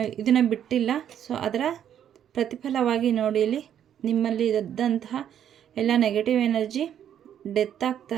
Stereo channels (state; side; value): quieter; left; 9.7 dB